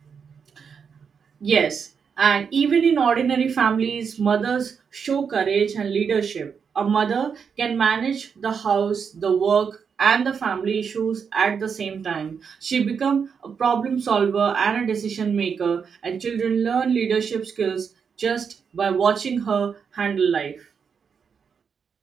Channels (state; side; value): quieter; left; 6.4 dB